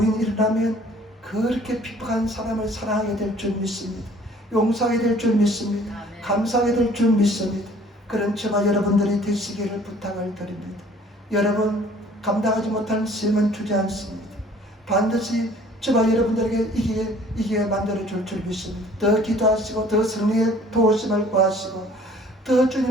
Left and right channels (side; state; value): both; normal; correlation 0.54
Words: 일어나면 그렇게 핍박한 사람을 사랑하게 될 줄 믿습니다. 용서하게 될 줄 믿습니다. 감사하게 될 줄 믿습니다. 그런 저와 여러분들이 되시기를 부탁을 드립니다. 여러분, 감당하지 못하는 시험은 주지 않습니다. 반드시 저와 여러분들에게 이기게 만들어줄 줄 믿습니다. 더 기도하시고 더 성령의 도우심을 구하시고 더